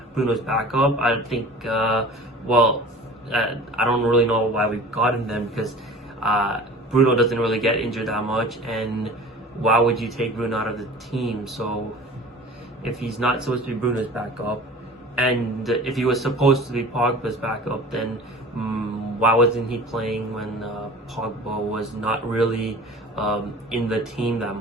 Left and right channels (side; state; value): both; normal; correlation 0.42